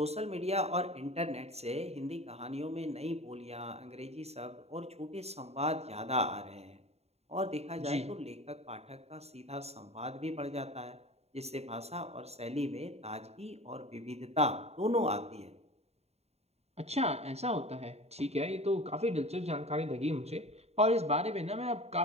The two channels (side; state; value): left; late; 0.30 ms